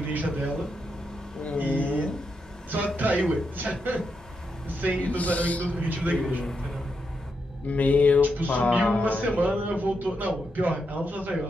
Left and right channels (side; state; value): both; normal; correlation 0.83